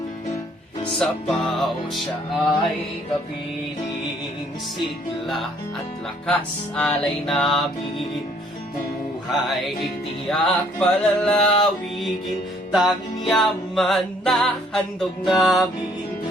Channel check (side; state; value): both; normal; correlation 0.62